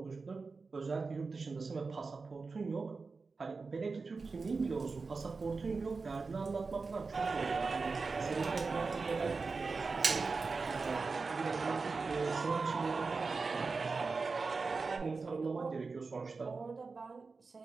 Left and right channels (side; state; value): left; quieter; 4.3 dB